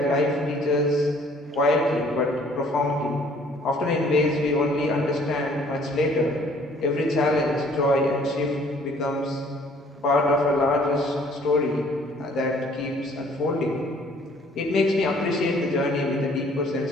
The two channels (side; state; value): both; normal; correlation 0.58